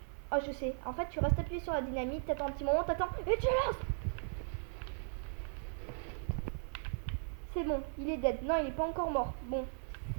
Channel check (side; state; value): left; silent; 53 dB below the other